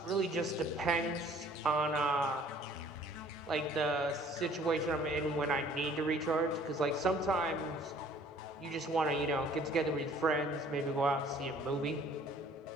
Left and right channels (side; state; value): both; normal; correlation 0.55